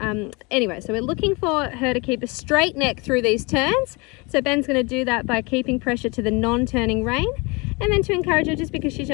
Anyway, so we're looking for her to keep a straight neck through these turns. So Ben's going to do that by keeping pressure to the non-turning rein. And then to encourage her, just because she's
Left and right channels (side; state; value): right; quieter; 27.7 dB